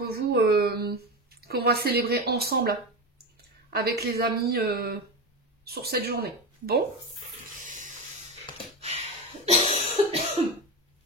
vous, qu'on va célébrer ensemble avec les amis sur cette journée. Bon.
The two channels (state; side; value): normal; both; correlation 0.20